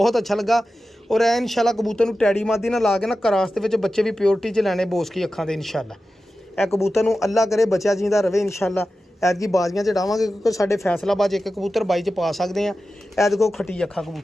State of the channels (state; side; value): normal; both; correlation 0.93